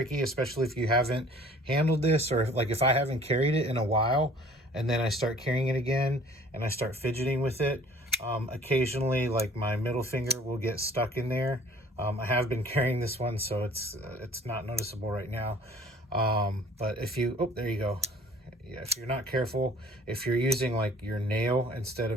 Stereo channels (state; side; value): normal; both; correlation 0.52